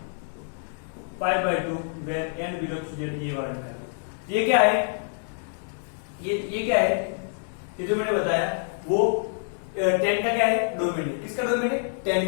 pi by 2 where n belongs to z, ये वाला निकाल दो। ये क्या है, ये क्या है, ये जो मैंने बताया वो 10 का क्या है, डोमेन है। किसका डोमेन है, 10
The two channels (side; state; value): right; silent; 60 dB below the other